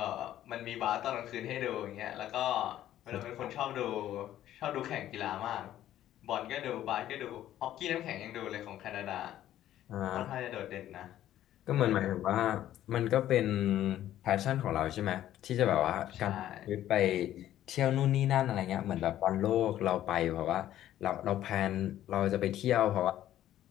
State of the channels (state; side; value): quieter; right; 12.5 dB